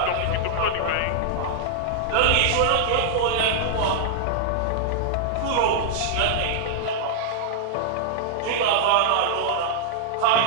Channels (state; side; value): different; both; correlation -0.01